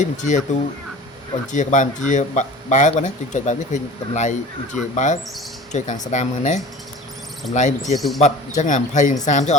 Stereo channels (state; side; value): normal; both; correlation 0.40